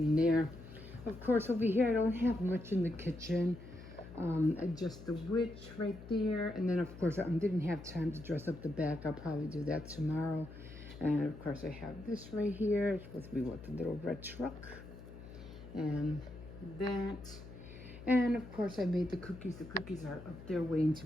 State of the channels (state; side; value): noise; left; hum, 15 dB below the sound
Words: there. Of course, over here, I don't have much in the kitchen. Just the witch right there. And then, of course, I didn't have time to dress up the back. I'll probably do that tomorrow. And, of course, I have this right here. It's supposed to be what, the little red truck. And that. And, of course, I made the cookies. The cookies are up there waiting to